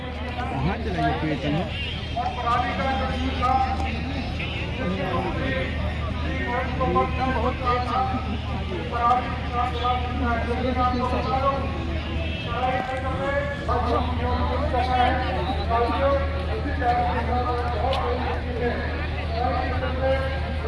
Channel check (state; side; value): identical; both; correlation 1.00